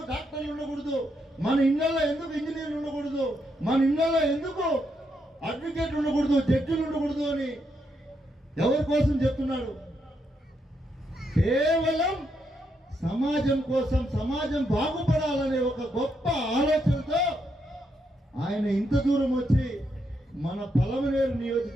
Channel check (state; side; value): normal; both; correlation 0.79